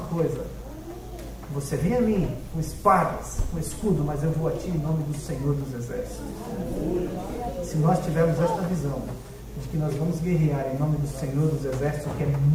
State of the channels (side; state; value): both; identical; correlation 1.00